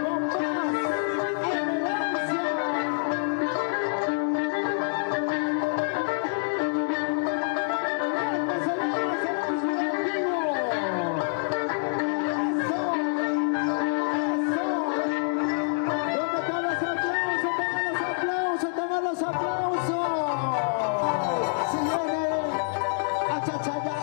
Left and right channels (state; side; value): silent; right; digital silence